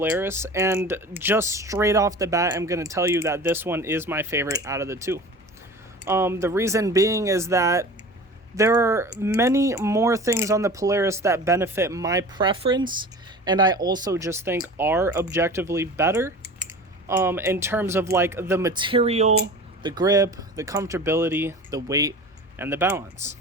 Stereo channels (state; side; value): normal; both; correlation 0.37